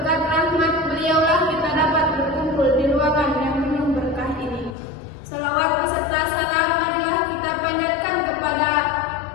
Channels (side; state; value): right; drops out; at 4.8 s